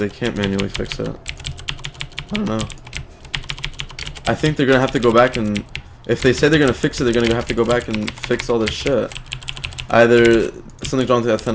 can't manually fix it. I don't know. I think they're gonna have to go back and... If they say they're gonna fix it, they're gonna have to go back and fix all this shit. Either something's wrong with the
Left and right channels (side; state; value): both; identical; correlation 1.00